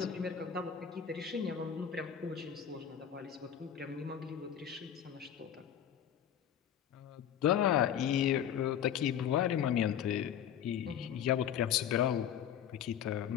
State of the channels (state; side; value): quieter; right; 9.3 dB